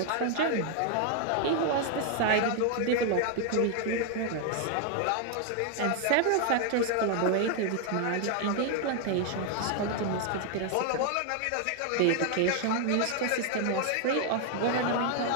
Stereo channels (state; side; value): different; both; correlation 0.00